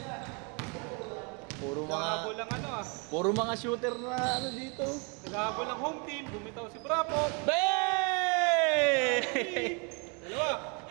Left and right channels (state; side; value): quieter; left; 32.7 dB